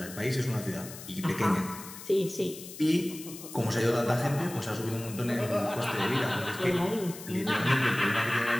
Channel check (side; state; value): left; noise; hiss, 14 dB below the sound